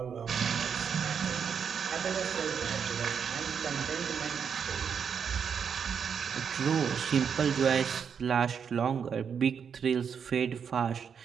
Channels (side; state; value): left; quieter; 7.0 dB